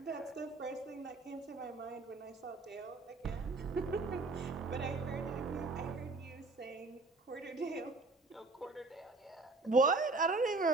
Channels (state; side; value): quieter; left; 3.5 dB